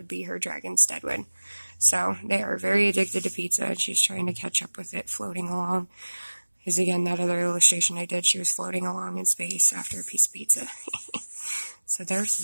be her dragon Steadwin. So they are very addicted to pizza, and she's trying to catch up with it, floating along. Because again, that other illustration I did, she was floating along in space after a piece of pizza. So there's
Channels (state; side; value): inverted; both; correlation -1.00